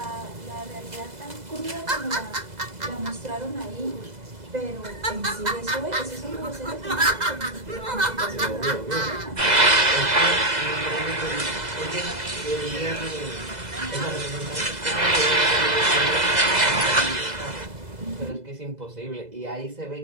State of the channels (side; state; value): left; late; 2.0 ms